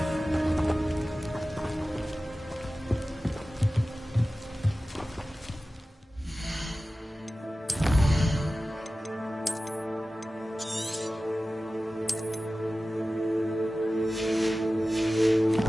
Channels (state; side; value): normal; both; correlation 0.96